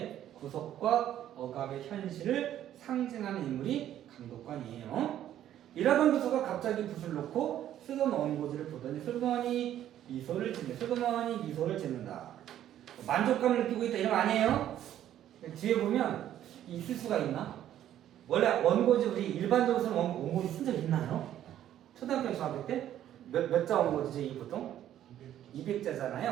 구속과 억압의 현실을 상징하는 인물이 감독관이에요. 일하던 교수가 갑자기 붓을 놓고 쓰던 원고지를 보더니 슬그머니 미소를 짓는다. 만족감을 느끼고 있다 이런 거 아니에요? 뒤에 보면 있을 수가 있나? 원래 원고지 우리 일반적으로는 원고지 쓴 적 있나요? 초등학교 중학교 때 몇 자 원고지지 보통?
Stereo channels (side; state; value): left; quieter; 11.6 dB